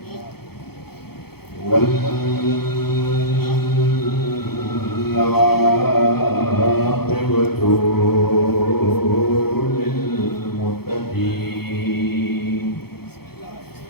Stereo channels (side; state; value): right; late; 0.96 ms